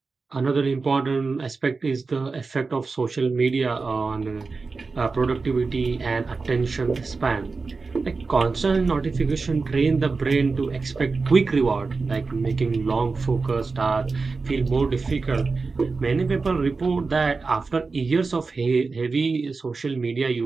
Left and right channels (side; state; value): left; quieter; 4.2 dB